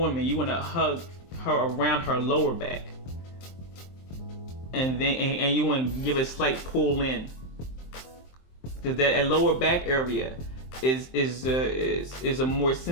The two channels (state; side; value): late; right; 23 ms